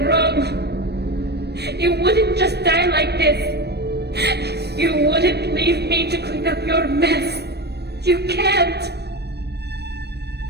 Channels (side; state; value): left; late; 0.48 ms